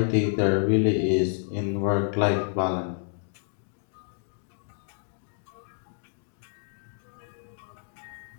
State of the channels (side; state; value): right; silent; digital silence